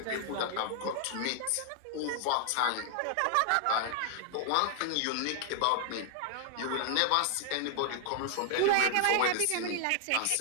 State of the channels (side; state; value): both; different; correlation 0.00